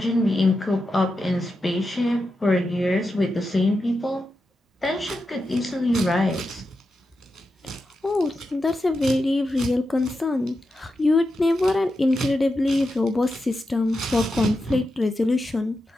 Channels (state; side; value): normal; both; correlation 0.89